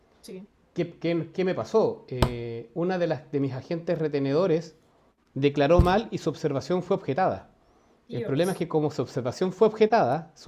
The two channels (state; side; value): identical; both; correlation 1.00